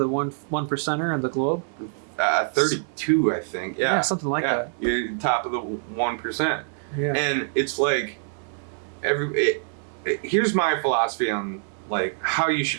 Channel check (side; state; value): left; silent; digital silence